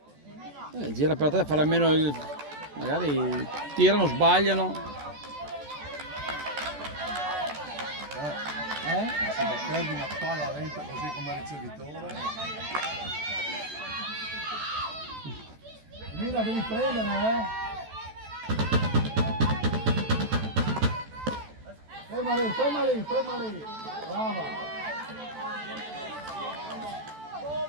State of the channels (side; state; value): left; late; 14 ms